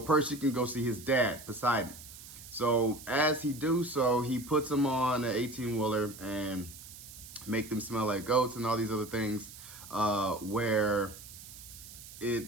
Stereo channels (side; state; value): right; noise; hiss, 16 dB below the sound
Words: can go see his dad, Poseidon. So as he do so, he puts them on an 18-wheeler and make them smell like goats and all these other things where they